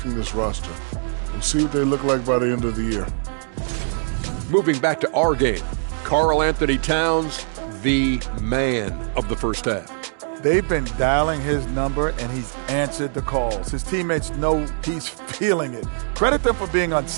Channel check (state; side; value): silent; left; digital silence